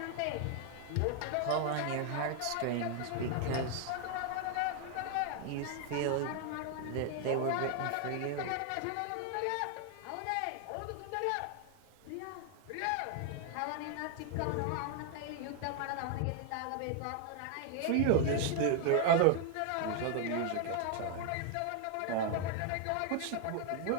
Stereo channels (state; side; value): different; both; correlation 0.00